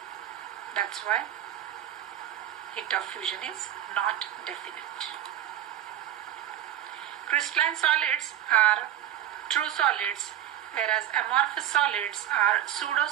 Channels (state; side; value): quieter; left; 11.6 dB